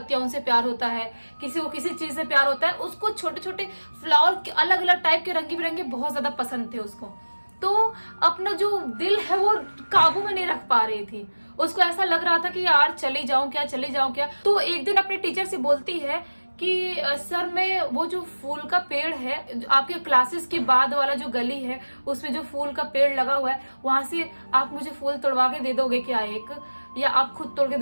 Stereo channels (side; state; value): both; inverted; correlation -1.00